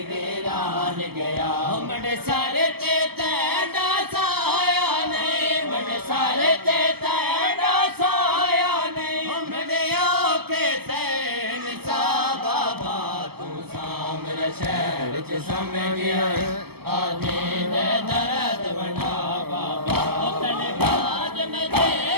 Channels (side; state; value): left; late; 0.96 ms